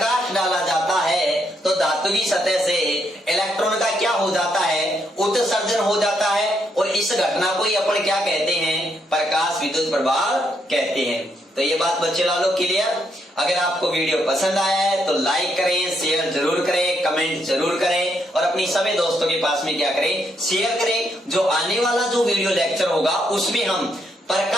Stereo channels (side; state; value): both; normal; correlation 0.76